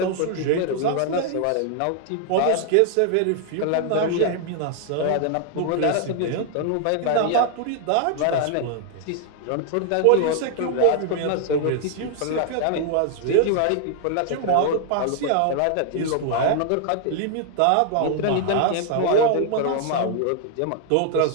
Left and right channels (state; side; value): different; both; correlation 0.00